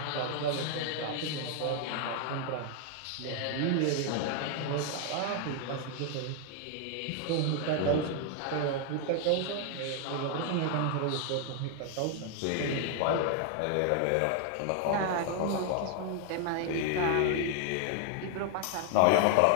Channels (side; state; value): both; different; correlation 0.00